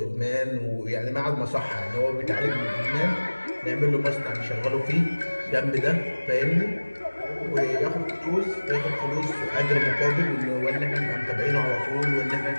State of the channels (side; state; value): both; inverted; correlation -1.00